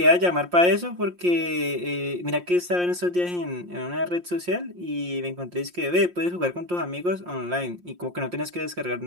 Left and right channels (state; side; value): late; left; 5.7 ms